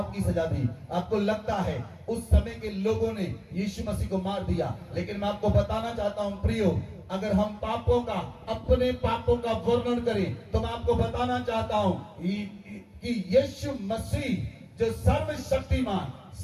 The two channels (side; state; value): both; identical; correlation 1.00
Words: की सजा दी? आपको लगता है उस समय के लोगों ने यीशु मसीह को मार दिया? लेकिन मैं आपको बताना चाहता हूं प्रियो, अगर हम अपने पापों का वर्णन करें तो मैं आपको बताना चाहता हूं कि यीशु मसीह जो सर्वशक्तिमान,